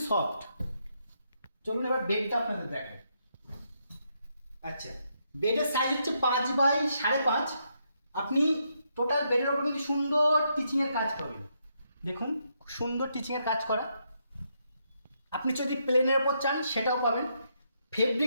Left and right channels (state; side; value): inverted; both; correlation -0.78